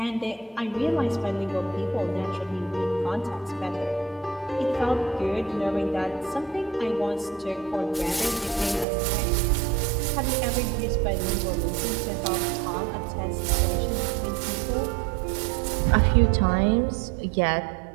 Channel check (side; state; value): left; drops out; at 8.8 s